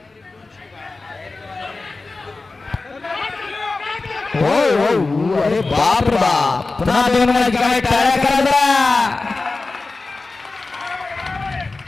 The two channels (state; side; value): quieter; right; 3.6 dB